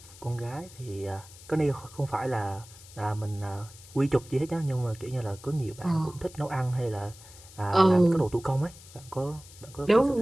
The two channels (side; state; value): left; noise; hiss, 20 dB below the sound